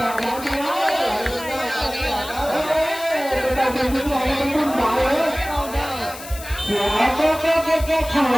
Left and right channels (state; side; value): noise; left; hiss, 14 dB below the sound